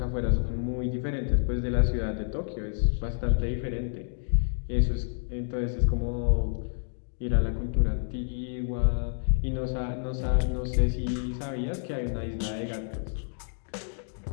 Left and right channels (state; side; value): silent; right; digital silence